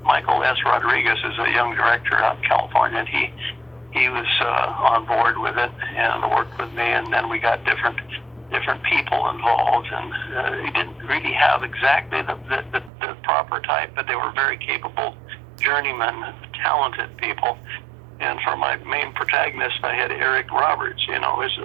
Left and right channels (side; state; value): left; drops out; at 12.9 s